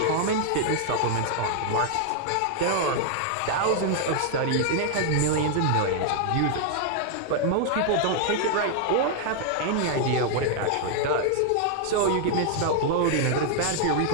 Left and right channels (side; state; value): both; different; correlation 0.00